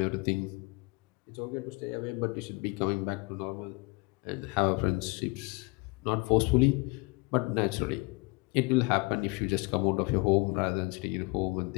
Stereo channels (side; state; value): right; quieter; 28.0 dB